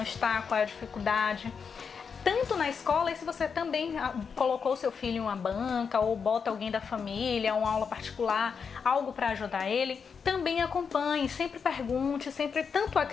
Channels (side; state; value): right; quieter; 6.1 dB